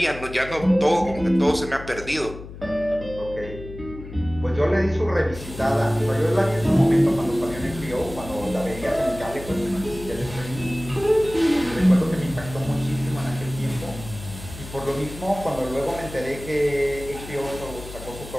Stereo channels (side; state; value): left; noise; hum, 13 dB below the sound